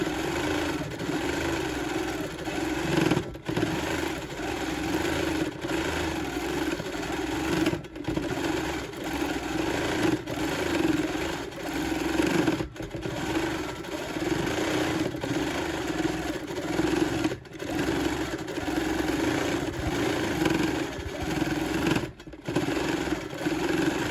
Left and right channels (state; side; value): identical; both; correlation 1.00